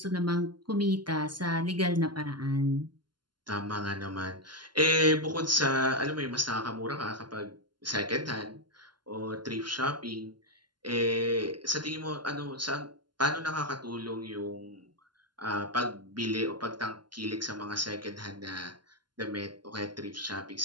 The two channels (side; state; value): left; late; 0.71 ms